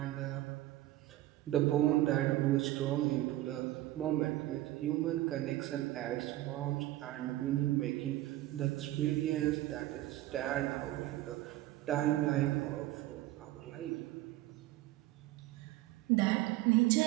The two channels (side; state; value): left; quieter; 16.0 dB